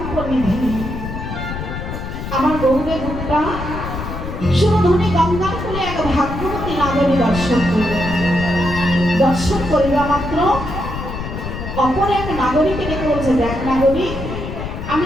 নিধি। আমার গৌরের রূপটা সুরধনী গঙ্গার কূলে এক ভাগ্যবতী নাগরী দর্শন করল। দর্শন করিবা মাত্র অপর এক নাগরিককে ডেকে বলছে, দেখ নাগরিক, আমি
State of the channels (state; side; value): noise; left; rumble, 7 dB below the sound